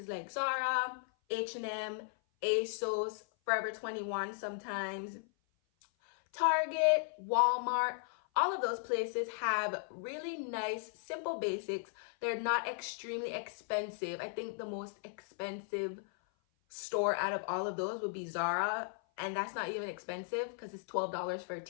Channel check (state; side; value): silent; right; 53 dB below the other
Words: like Zara, H&M, ASOS, Forever 21 sometimes, Target, Walmart. All of those places have really nice, simple basics. They're not extremely expensive. I think the most expensive store out of all of those would be Zara, and that's not even expensive because it's $12 for a